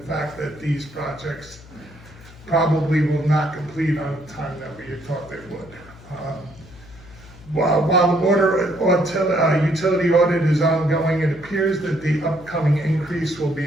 fact that these projects probably will not complete on the time that we had thought they would. While the water utility audit is ongoing, it appears that the upcoming increase will be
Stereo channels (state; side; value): noise; left; hum, 21 dB below the sound